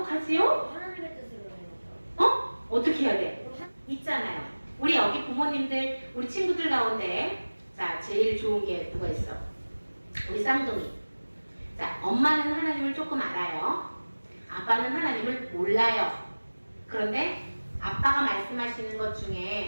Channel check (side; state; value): both; inverted; correlation -1.00